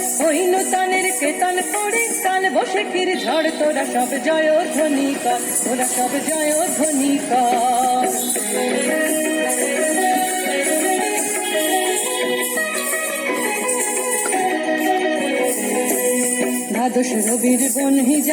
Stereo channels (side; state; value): both; identical; correlation 1.00